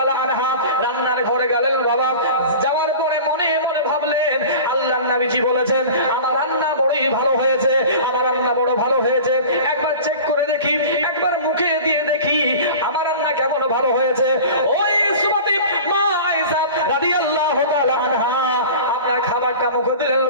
আনহা রান্নার ঘরে গেলেন। বাবা যাওয়ার পরে মনে মনে ভাবলেন, আল্লাহর নবীজি বলেছেন আমার রান্না বড়ই ভালো হয়েছে, আমার রান্না বড় ভালো হয়েছে, একবার চেক করে দেখি, একবার মুখে দিয়ে দেখি আমার রান্না কেমন ভালো হয়েছে। ওই সুমাতি মা আয়েশা রাদিয়াল্লাহু তাআলা আনহা আপনার খাবারটা মুখে দিলেন।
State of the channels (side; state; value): both; inverted; correlation -0.37